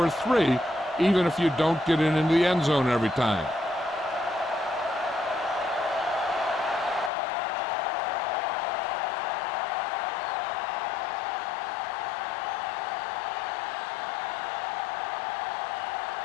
3, even if you don't get it into the end zone every time.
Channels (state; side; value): drops out; right; at 7.1 s